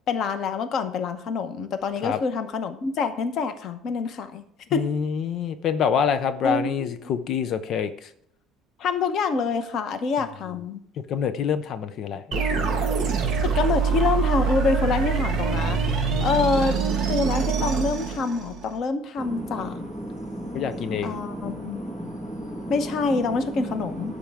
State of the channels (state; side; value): normal; both; correlation 0.53